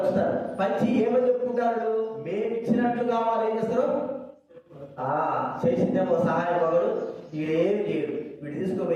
పంచి ఏమని చెప్పుకుంటారు, మేము ఇచ్చినట్లు కావాలి. ఏం చేస్తారు, చేసిందేమో సహాయం మగడు, వీడేమి చేయడు. వీడు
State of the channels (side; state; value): both; identical; correlation 1.00